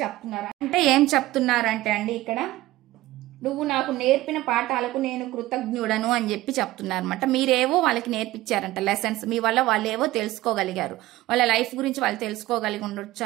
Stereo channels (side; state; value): left; quieter; 17.0 dB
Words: చెప్తున్నారు. అంటే ఏం చెప్తున్నారంటే అండి ఇక్కడ నువ్వు నాకు నేర్పిన పాఠాలకు నేను కృతజ్ఞుడను అని చెప్పి చెప్తున్నారు అనమాట. మీరేవో వాళ్ళకి నేర్పించారంట లెసన్స్, మీ వల్ల వాళ్ళు ఏవో తెలుసుకోగలిగారు, వాళ్ళ లైఫ్ గురించి వాళ్ళు తెలుసుకోగలిగి ఉండొచ్చు